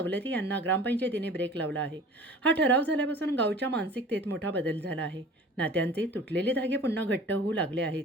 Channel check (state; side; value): normal; both; correlation 0.43